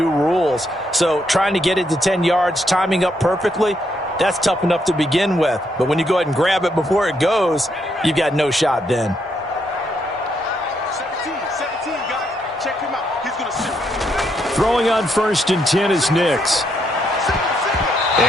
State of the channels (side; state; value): both; normal; correlation 0.76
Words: rules. So trying to get it to 10 yards, timing up perfectly, that's tough enough to begin with. But when you go ahead and grab it before it goes, you've got no shot then. Throwing on 1st and 10 is Nix.